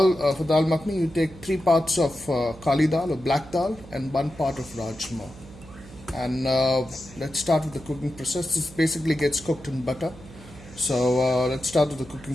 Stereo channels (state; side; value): noise; right; hum, 19 dB below the sound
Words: makhani, you take 3 parts of kali dal or black dal and 1 part of rajma. And let's start with the cooking process. This basically gets cooked in butter. So let's start with the cooking